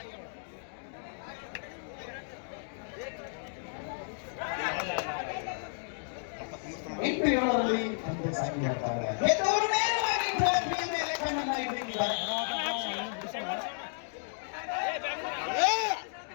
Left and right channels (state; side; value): silent; right; digital silence